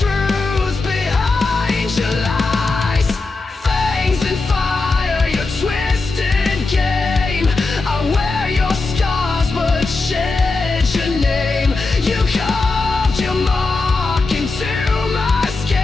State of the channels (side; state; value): right; quieter; 3.6 dB